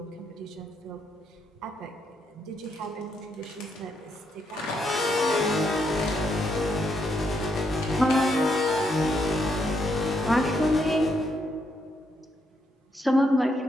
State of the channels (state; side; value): normal; both; correlation 0.77